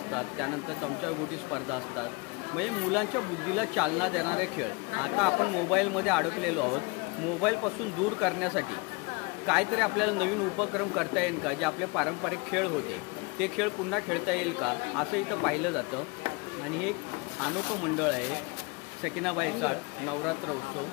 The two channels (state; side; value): quieter; right; 28.0 dB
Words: त्यानंतर चमचागोटी स्पर्धा असतात. म्हणजे मुलांच्या बुद्धीला चालना देणारे खेळ. आता आपण मोबाईलमध्ये अडकलेलो आहोत. मोबाईलपासून दूर करण्यासाठी काहीतरी आपल्याला नवीन उपक्रम करता येईल का? जे आपले पारंपरिक खेळ होते ते खेळ पुन्हा खेळता येईल का असं इथं पाहिलं जातं. आणि हे एक अनोखं मंडळ आहे सकीनाबाई चाळ नवरात्र उत्सव.